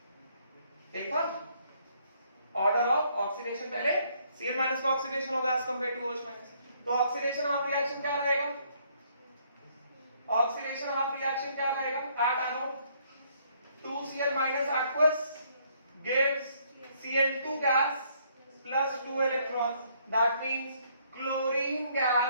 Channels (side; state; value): both; inverted; correlation -0.67